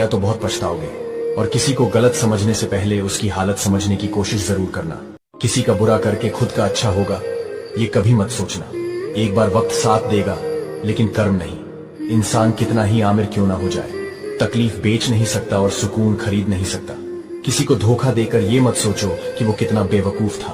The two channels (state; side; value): identical; both; correlation 1.00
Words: तो बहुत पछताओगे। और किसी को गलत समझने से पहले उसकी हालत समझने की कोशिश जरूर करना। किसी का बुरा करके खुद का अच्छा होगा ये कभी मत सोचना। एक बार वक्त साथ देगा लेकिन कर्म नहीं। इंसान कितना ही आमिर क्यों ना हो जाए, तकलीफ बेच नहीं सकता और सुकून खरीद नहीं सकता। किसी को धोखा देकर ये मत सोचो कि वो कितना बेवकूफ